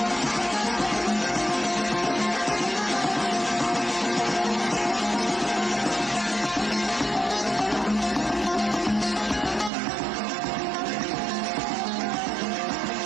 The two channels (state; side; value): drops out; left; at 9.7 s